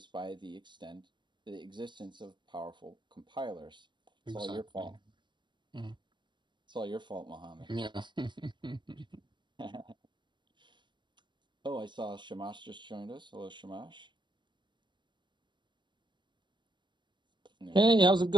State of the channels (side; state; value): left; late; 0.22 ms